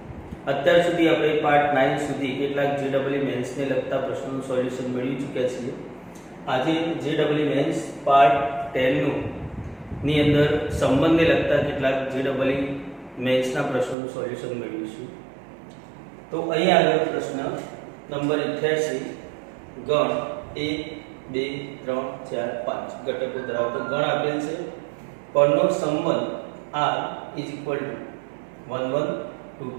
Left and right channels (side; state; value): left; drops out; at 14.0 s